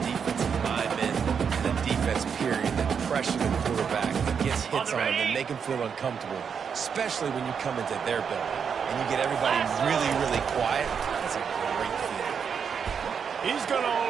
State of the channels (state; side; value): quieter; left; 6.8 dB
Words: defensive lineman and a defense period that pressure the quarterback, that gets hits on him, and make him feel uncomfortable, especially when you come into their building and you get everybody really, really quiet. That's a great feeling. He's going to